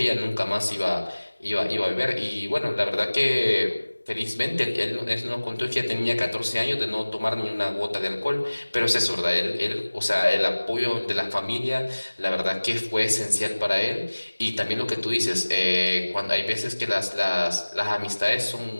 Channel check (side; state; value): both; inverted; correlation -1.00